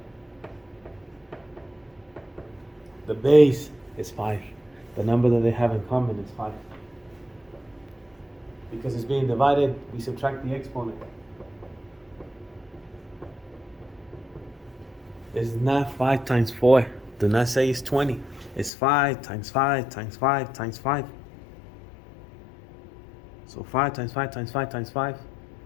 The base is 5. The number that they have in common is 5. Because it's being divided, we subtract the exponent. It's not 5 times 4. Do not say it's 20. It's 5 times 5 times 5 times 5. So 5 times 5 times 5 times 5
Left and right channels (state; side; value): drops out; right; at 18.7 s